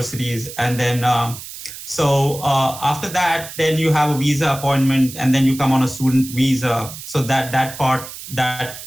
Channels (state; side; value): noise; right; hiss, 12 dB below the sound